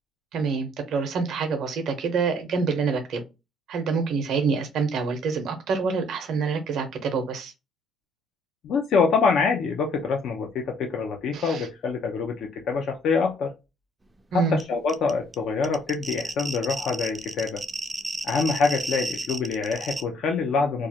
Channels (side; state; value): both; normal; correlation 0.62